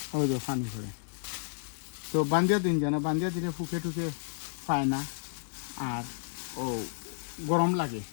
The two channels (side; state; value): right; silent; 57 dB below the other